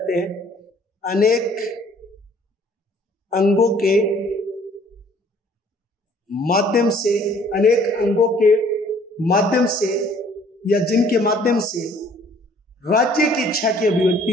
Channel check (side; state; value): both; normal; correlation 0.57